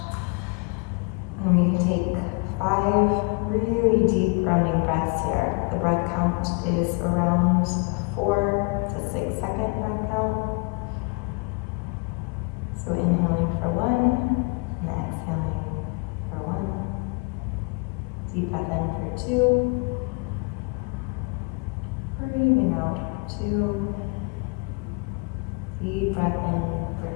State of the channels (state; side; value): quieter; right; 31.6 dB